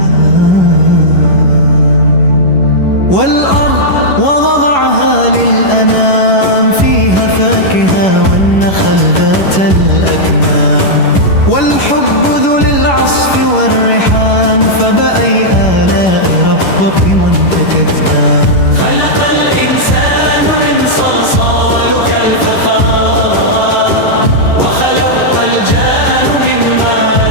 والأرض ووضعها للأنام فيها فاكهة والنخل ذات الأكمام والحب ذو للعصف والريحان فبأي آلاء ربك من تكذبان خلق الإنسان من صلصال كالفخار وخلق الجان من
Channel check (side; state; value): right; late; 11 ms